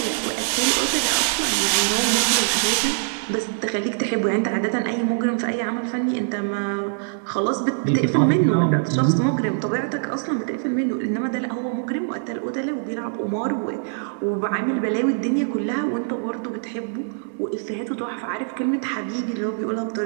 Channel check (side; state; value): left; silent; digital silence